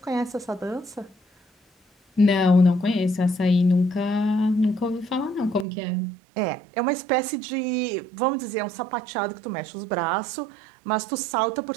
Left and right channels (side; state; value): left; drops out; at 5.7 s